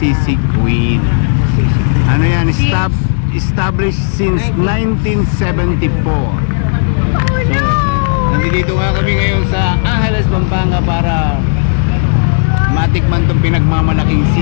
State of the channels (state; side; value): silent; right; digital silence